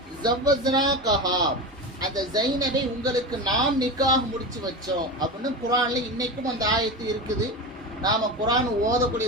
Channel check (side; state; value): both; normal; correlation 0.23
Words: ஜவ்வஸ்னா கஹா, அந்த ஜைனபை உங்களுக்கு நாம் நிக்காஹ் முடிச்சு வச்சோம் அப்படின்னு குர்ஆன்ல இன்னைக்கும் அந்த ஆயத்து இருக்குது. நாம குர்ஆன்